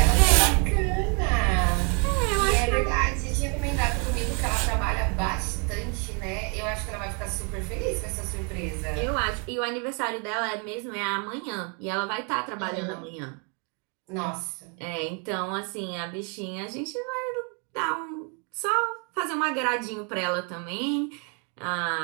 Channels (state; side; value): quieter; left; 34.9 dB